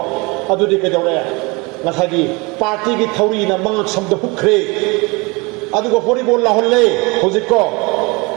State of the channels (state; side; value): quieter; left; 26.8 dB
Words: ꯑꯗꯨꯗꯤ ꯀꯩꯗꯧꯔꯦ ꯉꯁꯥꯏꯒꯤ ꯄꯥꯔꯇꯤꯒꯤ ꯊꯧꯔꯤꯅ ꯃꯉꯛ ꯁꯝꯗ ꯍꯨꯛꯈ꯭ꯔꯦ ꯑꯗꯨꯒ ꯚꯣꯂꯤꯕꯣꯜ ꯂꯥꯎꯍꯜꯂꯦ ꯍꯧꯖꯤꯛꯀꯣ